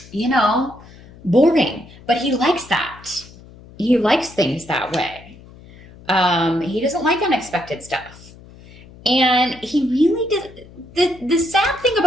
boring. But he likes that. He likes things that way. He doesn't like unexpected stuff. And he really does. The sad thing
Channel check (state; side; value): noise; left; hum, 21 dB below the sound